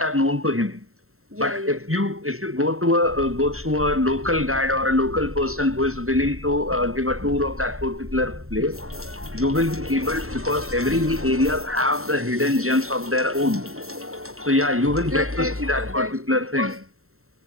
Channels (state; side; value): late; left; 0.63 ms